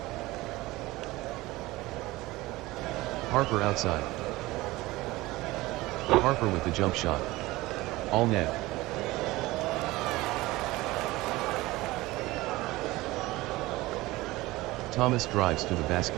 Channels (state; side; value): quieter; left; 19.5 dB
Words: Harper outside. Harper with the jump shot. All net. Thomas drives to the